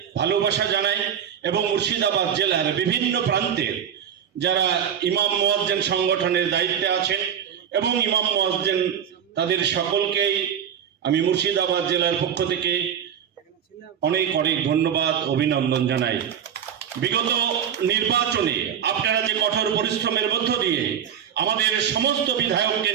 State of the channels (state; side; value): quieter; left; 8.6 dB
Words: ভালোবাসা জানাই। এবং মুর্শিদাবাদ জেলার বিভিন্ন প্রান্তের যারা ইমাম মুয়াজ্জিন সংগঠনের দায়িত্বে আছেন এবং ইমাম মুয়াজ্জিন, তাদের সকলকেই আমি মুর্শিদাবাদ জেলার পক্ষ থেকে অনেক অনেক ধন্যবাদ, অভিনন্দন জানাই। বিগত নির্বাচনে আপনারা যে কঠোর পরিশ্রমের মধ্য দিয়ে আমাদের সমস্ত বিধায়ককে